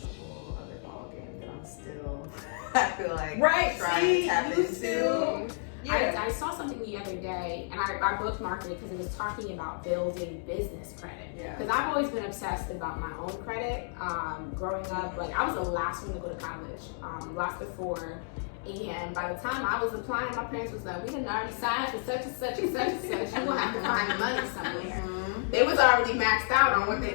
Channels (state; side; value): silent; right; digital silence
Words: whole other ballgame that I'm still, I feel like, trying to tap into. Yeah. I saw something the other day, and I bookmarked it because it was talking about building business credit. Because I've always been obsessed about my own credit. Growing up, like, I was the last one to go to college, last of 4. And by the time I was applying, my parents was like, we done already signed for such and such and such and such. You're going to have to find the money somewhere. They was already maxed out on what they,